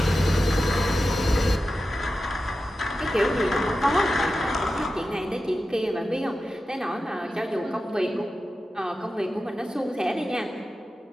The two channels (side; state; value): both; normal; correlation 0.93